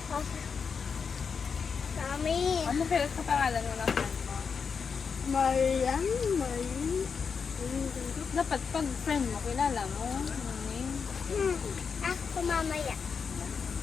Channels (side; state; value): right; quieter; 5.9 dB